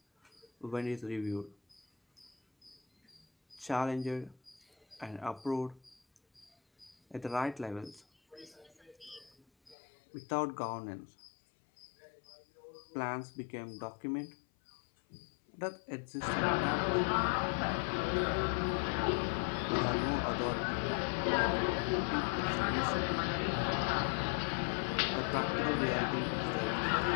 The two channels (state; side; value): drops out; right; at 9.8 s